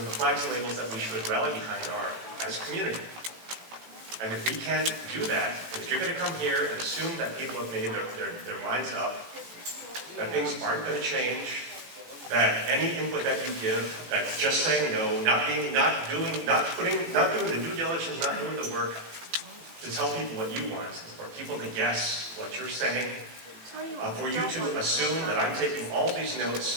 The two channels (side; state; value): left; late; 18 ms